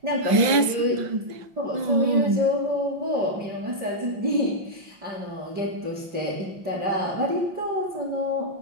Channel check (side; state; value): left; late; 5.9 ms